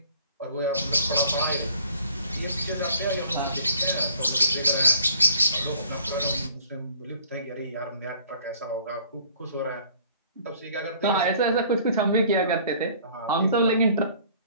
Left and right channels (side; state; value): both; inverted; correlation -0.55